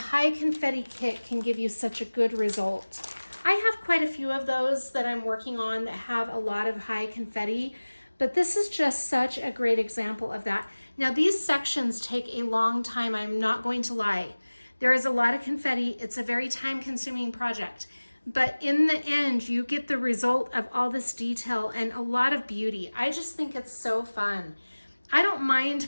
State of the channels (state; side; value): inverted; both; correlation -1.00